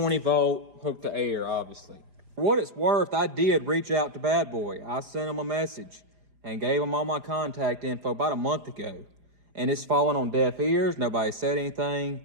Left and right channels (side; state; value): left; late; 4.9 ms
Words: volt, hooked to air, obviously. For what it's worth, I did reach out to Bad Boy. I sent him a message and gave him all my contact info about a month ago. And it's fallen on deaf ears. Nobody said anything.